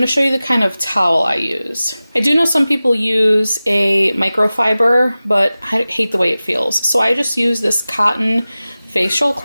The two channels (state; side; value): inverted; both; correlation -0.96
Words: show you the kind of towel I use. I do know some people use a microfiber, but I hate the way it feels. So I just use this cotton facial